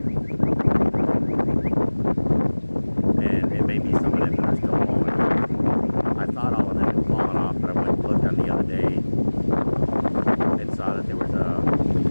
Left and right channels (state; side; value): inverted; both; correlation -1.00